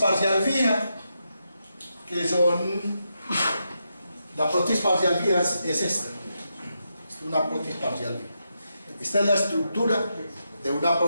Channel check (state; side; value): inverted; both; correlation -0.84